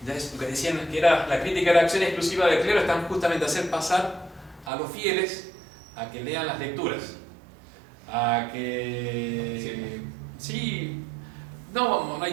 ya es lo que decían que era la crítica de la acción exclusiva del clero, están justamente a hacer pasar a los fieles a que lean las lecturas, a que sí, no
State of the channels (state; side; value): drops out; left; at 4.7 s